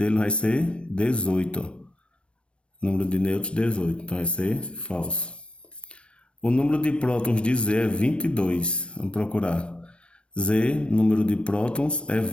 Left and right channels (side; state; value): right; late; 0.057 ms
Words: vai ser 18. Ó. Número de nêutrons, 18. Então vai ser falso. O número de prótons de Z é 22. Vamos procurar. Z, número de prótons, é